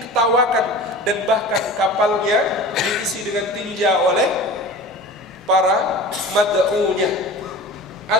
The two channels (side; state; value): both; normal; correlation 0.37